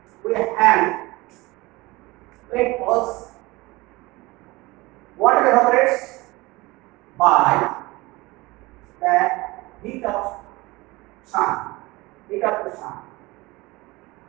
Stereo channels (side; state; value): left; quieter; 21.9 dB